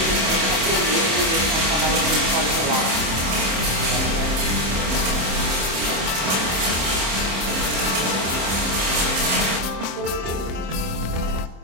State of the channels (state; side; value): late; left; 27 ms